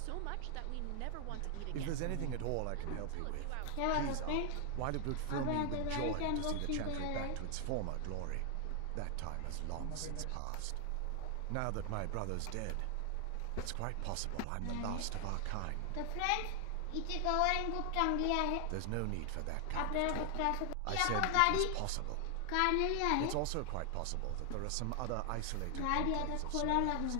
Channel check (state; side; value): different; both; correlation 0.00